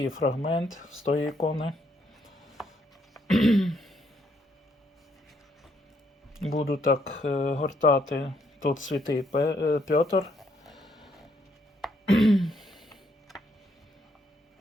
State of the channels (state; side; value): normal; both; correlation 0.72